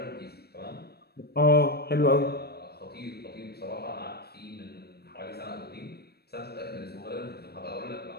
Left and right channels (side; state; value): right; late; 0.47 ms